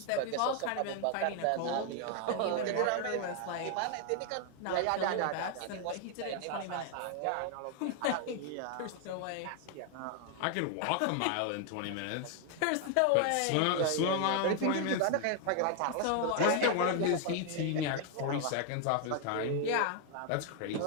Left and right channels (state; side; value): different; both; correlation 0.00